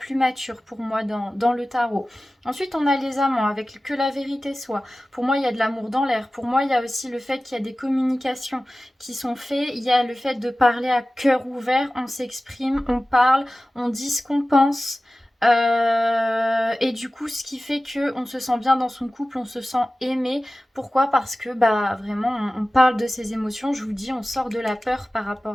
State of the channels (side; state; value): both; normal; correlation 0.96